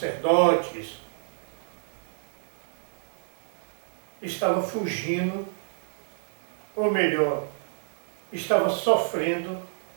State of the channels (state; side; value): silent; left; digital silence